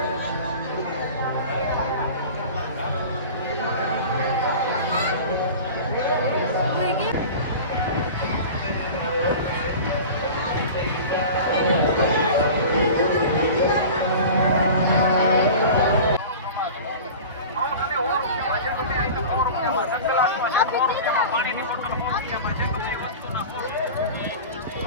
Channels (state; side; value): inverted; both; correlation -0.36